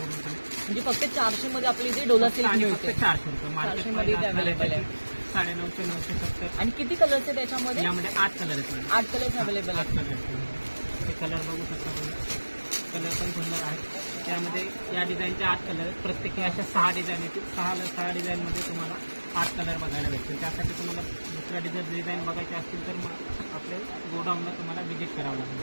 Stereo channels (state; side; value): inverted; both; correlation -1.00